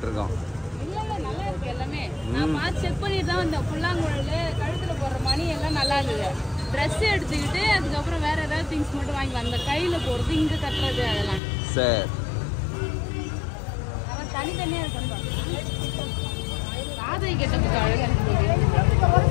இருக்கும். நல்லா இருக்கு எல்லாமே. நான் பார்த்து செக் பண்ணிட்டு தான் இந்த புல்லாங்குழல், கழுத்தில் போடுற மணி எல்லாம் நல்லா இருந்தது. ட்ரெஸ் எடுத்துக்கிட்டு அதுக்கப்புறம் வேற ஏதாவது திங்ஸ் மட்டும் வாங்கிக்கலாம். அந்த கையில் போடுறது, இங்கே கட்டுறது, அதெல்லாம் சரி. அவன் தனித்தனியாக இருக்கணும். ராதை கெட்டப்புக்கு அழகாக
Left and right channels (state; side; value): drops out; right; at 11.4 s